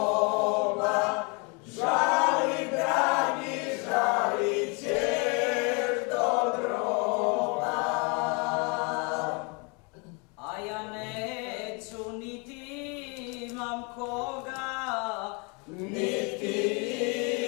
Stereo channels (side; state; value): right; quieter; 32.5 dB